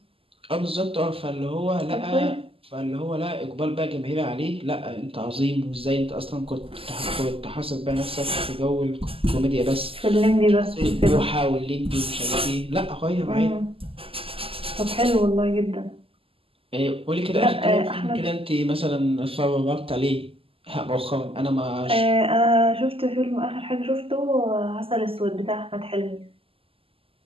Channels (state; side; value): late; left; 0.26 ms